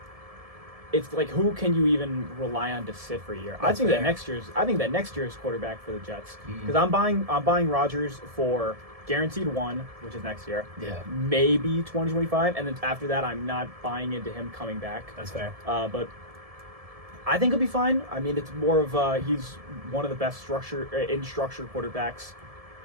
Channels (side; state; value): left; late; 1.7 ms